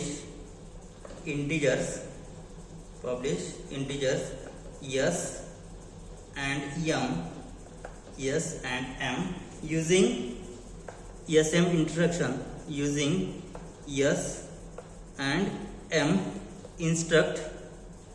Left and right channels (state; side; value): identical; both; correlation 1.00